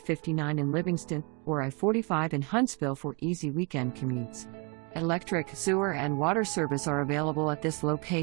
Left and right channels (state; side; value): quieter; left; 32.9 dB